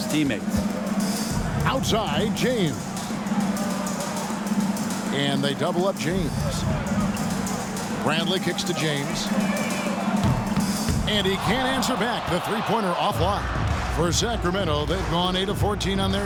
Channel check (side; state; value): both; identical; correlation 1.00